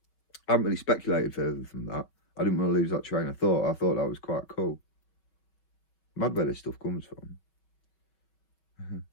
I haven't really speculated further from that. I didn't want to lose that train of thought. I thought that was quite cool. Mad where this stuff comes from.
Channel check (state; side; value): late; right; 6.0 ms